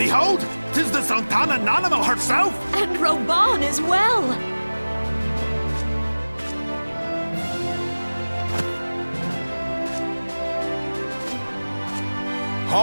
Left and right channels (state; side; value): inverted; both; correlation -1.00